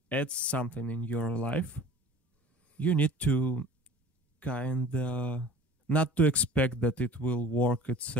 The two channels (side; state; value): both; normal; correlation 0.43